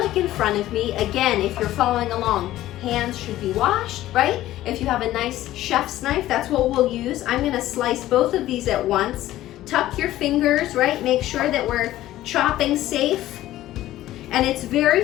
in front of me. Again, if you're following along, hands should be washed, right? If you have a nice chef's knife, that's what we'll use. I'm going to slice both of these at once. Tuck your fingers, right? Make sure that we're chopping safe. And it's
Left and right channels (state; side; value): quieter; right; 14.6 dB